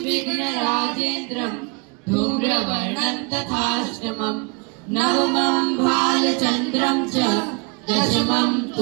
विघ्नराजेन्द्रं धूम्रवर्णं तथाष्टमं नवमं भालचन्द्रं च दशमं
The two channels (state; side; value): quieter; left; 31.8 dB